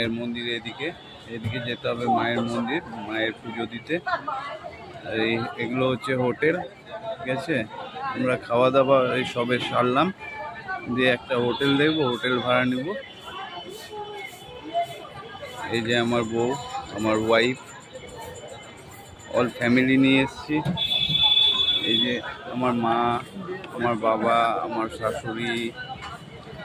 মন্দির, এদিকে যেতে হবে মায়ের মন্দির, মায়ের পুজো দিতে। আর এগুলো হচ্ছে হোটেল, ঠিক আছে। আমরা খাওয়া দাওয়া এই সবে সারলাম, দিয়ে একটা হোটেল দেখবো, হোটেল ভাড়া নিব। এই যে আমার বউ, আমার ওয়াইফ, অল ফ্যামিলি নিয়ে এসেছি। এই যে আমার মা, আমার বাবা, আমার শাশুড়ি,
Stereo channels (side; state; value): both; identical; correlation 1.00